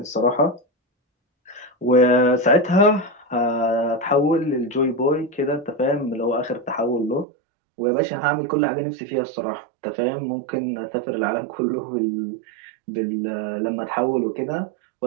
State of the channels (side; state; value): left; drops out; at 7.2 s